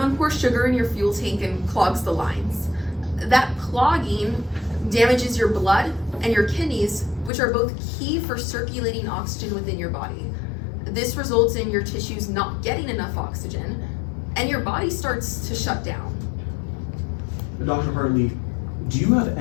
pours sugar in your fuel tank and clogs the lines. That clogging damages your blood and your kidneys, which are both key for circulating oxygen within your body. This results in your tissues not getting enough oxygen, and your body starts to shut down. Dr. Hartley, do you have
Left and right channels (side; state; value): right; drops out; at 7.3 s